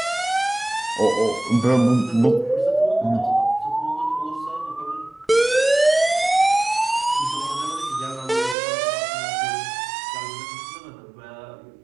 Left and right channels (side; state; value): left; drops out; at 8.6 s